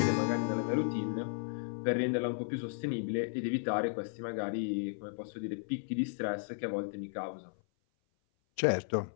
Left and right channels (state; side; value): silent; right; 55 dB below the other